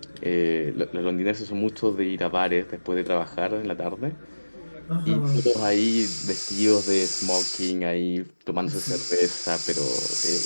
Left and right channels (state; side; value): inverted; both; correlation -1.00